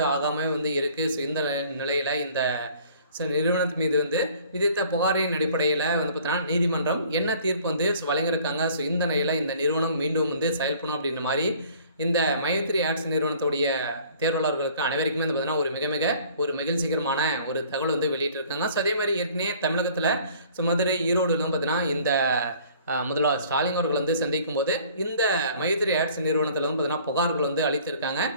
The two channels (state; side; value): inverted; both; correlation -0.53